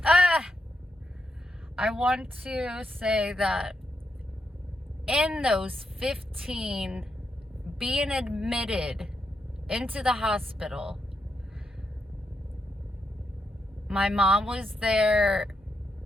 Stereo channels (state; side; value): normal; both; correlation 0.82